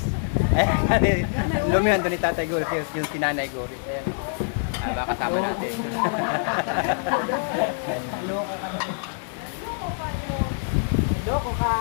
Lumihan doon ni Tatay Goris, yung si Nanay Goris. Ayan. Baka kasama natin. Loko ka na. Loko ka.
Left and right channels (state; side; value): silent; right; 62 dB below the other